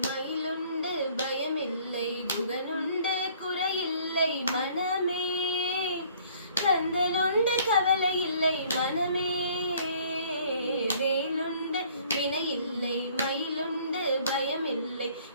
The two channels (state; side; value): inverted; both; correlation -0.57